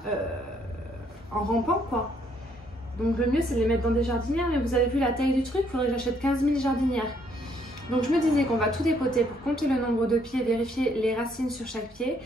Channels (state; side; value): normal; both; correlation 0.68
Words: en rampant quoi. Donc le mieux c'est de les mettre dans des jardinières, mais vous avez vu la taille du truc, il faudrait que j'achète 15 000 jardinières. Donc je me disais qu'on va tout dépoter pour compter le nombre de pieds, vérifier les racines sur chaque pied.